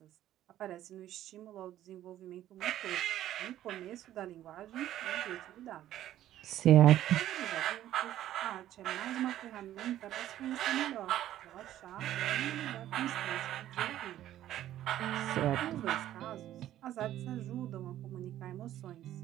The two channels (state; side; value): quieter; left; 12.7 dB